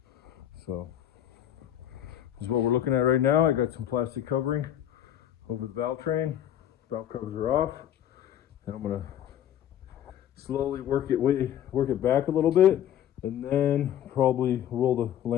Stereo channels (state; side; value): quieter; right; 10.9 dB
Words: So this is what we're looking at right now. I got some plastic covering over the valve train. Valve covers are off, and I'm gonna slowly work it back a little bit, and then probably roll the